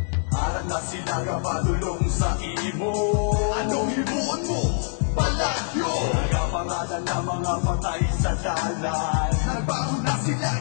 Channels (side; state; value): right; silent; digital silence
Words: Aral na sila kapadulong sa imo. Anong himuon mo? Palagyo! Nagapangalan na mga patay sa dalan. Nagbaho na sila,